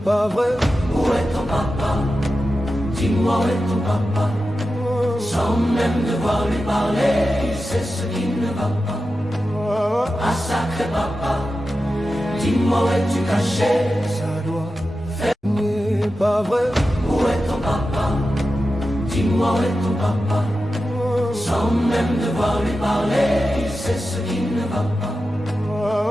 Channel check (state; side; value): normal; both; correlation 0.92